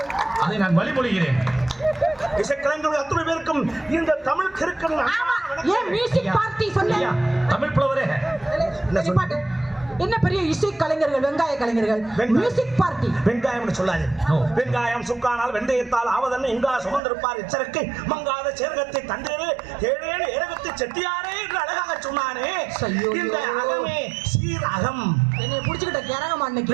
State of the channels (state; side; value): drops out; left; at 17.0 s